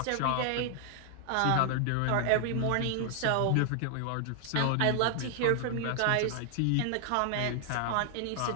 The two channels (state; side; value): different; both; correlation 0.00